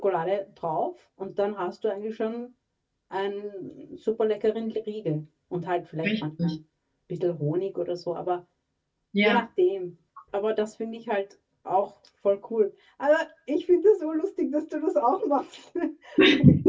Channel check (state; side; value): identical; both; correlation 1.00